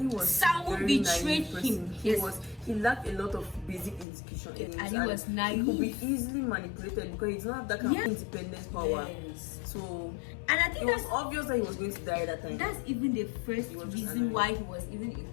was Sangu very betrayed naive person. him. He lacked a lot of basic education. Yes, in Ali him, was and naive. He could be easily manipulated because he does not have that kind of independence power. Yes. So And I it think was that's obvious that he was going to die that time. That's even the first was just reason annoying. why he was even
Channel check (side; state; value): right; drops out; at 4.0 s